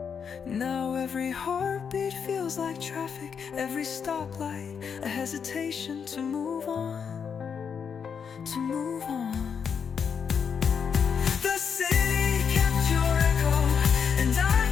Now every heartbeat feels like traffic, every stoplight a hesitation to move on, to move on. The city kept your echo, and I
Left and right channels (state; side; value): quieter; right; 6.8 dB